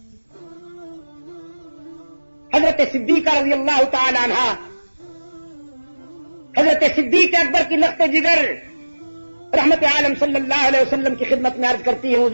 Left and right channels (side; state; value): both; inverted; correlation -1.00